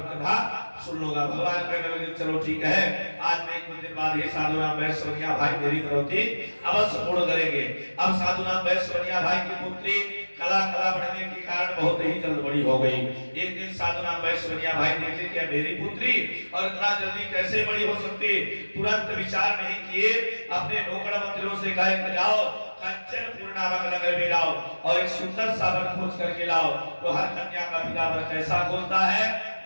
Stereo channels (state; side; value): inverted; both; correlation -1.00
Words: कथा सुन लूंगा। भगवान कहने लगे, चलो ठीक है, आज मैं कुछ दिन बाद ही साधु नाम वैश्यवनिया भाई मेरी प्रवृत्ति अवश्य पूर्ण करेंगे। अब साधु नाम वैश्यवनिया भाई की पुत्री कला कला बढ़ने के कारण बहुत ही जल्द बड़ी हो गई। एक दिन साधु नाम वैश्यवनिया भाई देखे कि मेरी पुत्री और इतना जल्दी कैसे बड़ी हो सकती, तुरंत विचार नहीं किए, अपने नौकर मंत्रियों से कहा, जाओ कंचनपुर नामक नगर में लाओ और एक सुंदर सा वर खोज करके लाओ। तो हर कन्या का पिता वर कैसा खोजता है?